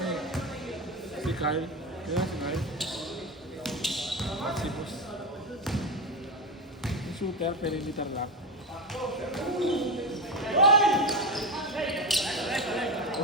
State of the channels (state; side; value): normal; both; correlation 0.16